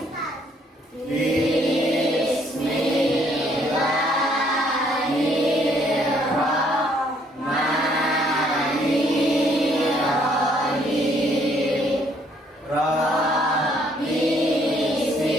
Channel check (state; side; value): normal; both; correlation 0.66